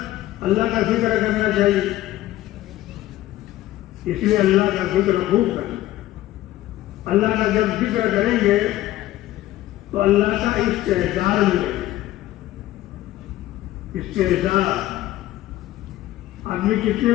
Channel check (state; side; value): quieter; right; 15.1 dB